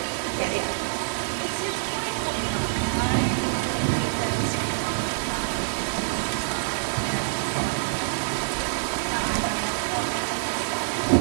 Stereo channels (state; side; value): silent; left; digital silence